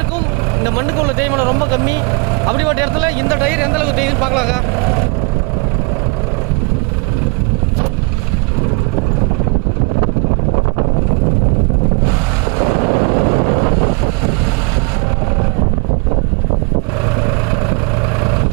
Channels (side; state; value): left; quieter; 30.6 dB